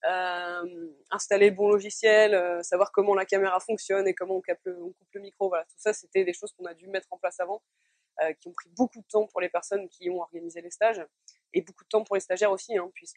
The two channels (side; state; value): both; identical; correlation 1.00